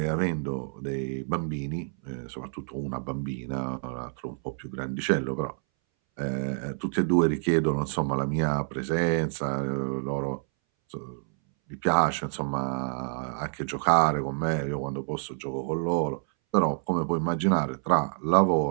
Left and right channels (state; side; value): silent; left; 59 dB below the other